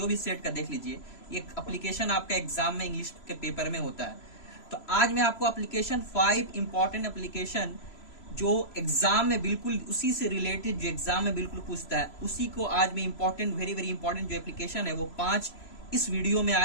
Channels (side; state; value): right; late; 3.0 ms